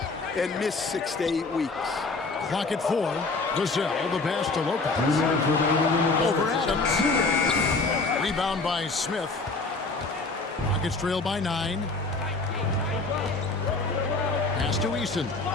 and miss 6 to 8 weeks. Clock at 4. Vassell, the pass to Lopez. Over Adams. Rebound by Smith. Rockets trail by 9. Pass to Easton.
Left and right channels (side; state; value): right; quieter; 3.7 dB